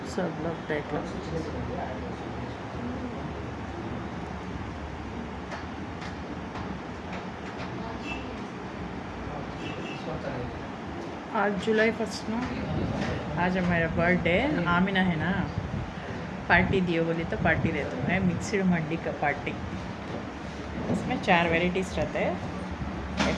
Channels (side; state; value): both; identical; correlation 1.00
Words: सब लोग देख लो। आज जुलाई 1 ना, आज मेरा बर्थडे। आमिना है ना, पार्टी दियो बोली तो पार्टी देता हूँ। मैं मिक्सड मंडी का पार्टी, उसमें 4 वेराइटीज़ रहते हैं।